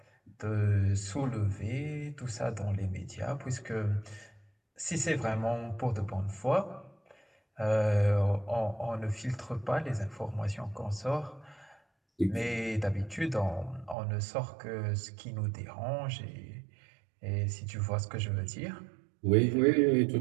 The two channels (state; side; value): drops out; left; at 14.0 s